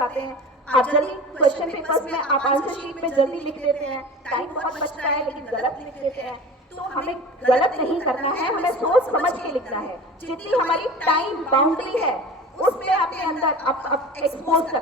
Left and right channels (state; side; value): normal; both; correlation 0.36